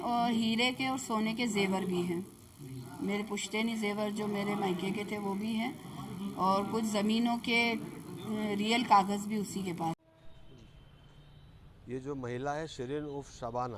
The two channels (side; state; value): both; identical; correlation 1.00